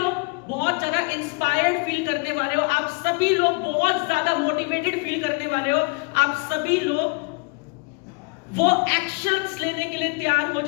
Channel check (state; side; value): quieter; right; 30.8 dB